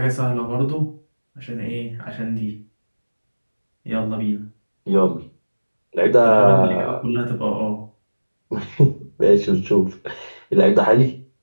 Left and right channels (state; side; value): inverted; both; correlation -1.00